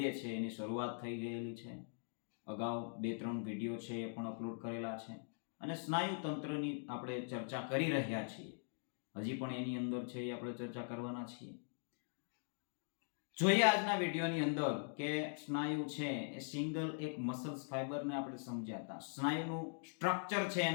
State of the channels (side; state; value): right; silent; digital silence